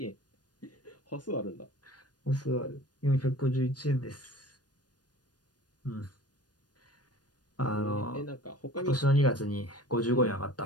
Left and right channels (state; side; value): late; right; 0.69 ms